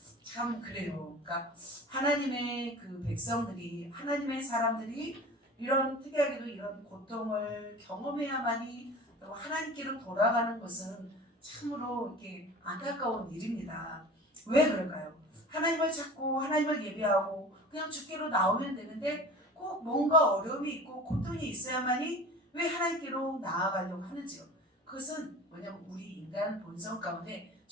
참 그래요. 그러니까 하나님의 그 백성들이, 하나님의 사람들이 이런 특이하게도 이런 고통을 경험해야만이 하나님께로 돌아가는 것은 참으로 이렇게 안타까운 일입니다. 왜 그럴까요? 하나님을 찾고 하나님을 예배하고 그냥 주께로 나오면 되는데 꼭 뭔가 어려움이 있고 고통이 있어야만이 왜 하나님께로 나아가려고 하는지요. 그것은 뭐냐면 우리 인간 본성 가운데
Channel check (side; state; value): both; normal; correlation 0.39